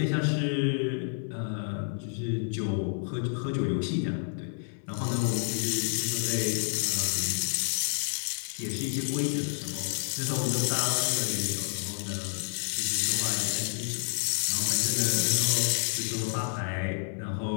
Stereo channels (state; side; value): silent; right; digital silence